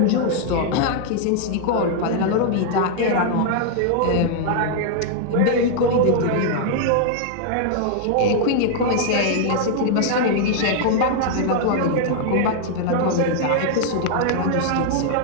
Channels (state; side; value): different; both; correlation 0.00